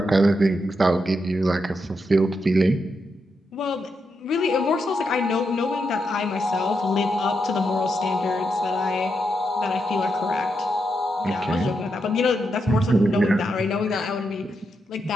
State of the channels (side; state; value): both; normal; correlation 0.83